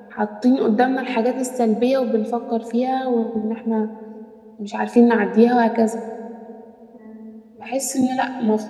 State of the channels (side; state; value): both; identical; correlation 1.00